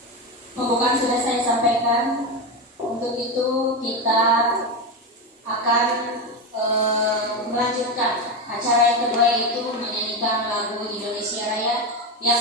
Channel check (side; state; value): both; normal; correlation 0.15